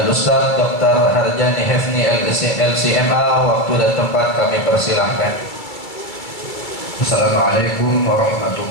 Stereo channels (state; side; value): late; right; 2.3 ms